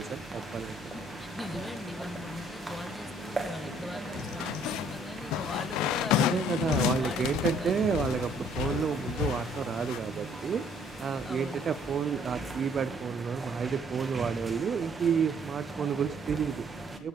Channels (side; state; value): both; normal; correlation 0.62